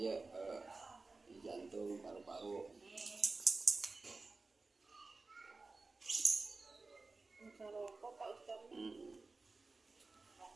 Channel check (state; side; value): quieter; left; 3.7 dB